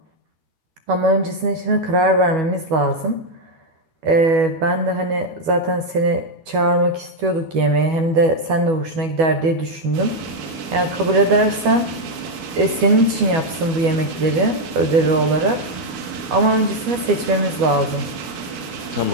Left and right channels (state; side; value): late; left; 12 ms